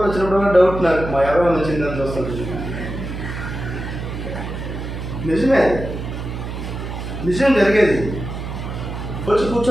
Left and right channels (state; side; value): noise; right; hum, 6 dB below the sound